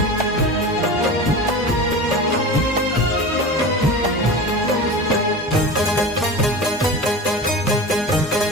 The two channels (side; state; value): both; normal; correlation 0.31